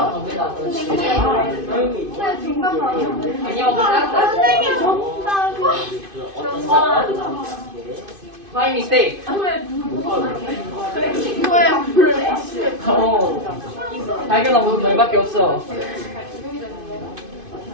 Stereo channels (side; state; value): left; late; 2.5 ms